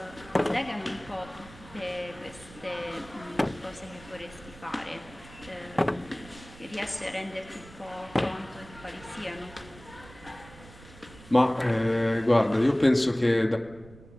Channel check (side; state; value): right; noise; rumble, 20 dB below the sound